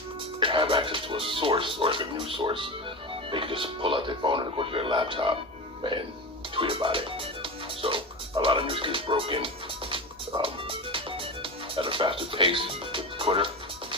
have access to a source or like a news source. They can just pull out their phone and go to their laptop and tweet about it. So a lot of news gets broken at a faster pace with Twitter.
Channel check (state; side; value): noise; left; hum, 27 dB below the sound